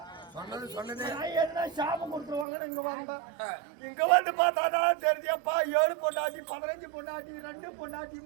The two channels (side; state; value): left; drops out; at 2.5 s